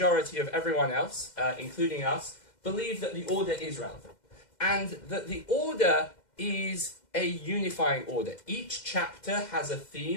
of everyone else, including us, believe that the order is relevant. And that the order is a unifying order. Each chapter has a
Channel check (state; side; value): late; right; 2.1 ms